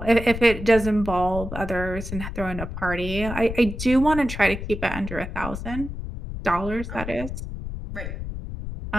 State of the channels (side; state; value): left; noise; rumble, 7 dB below the sound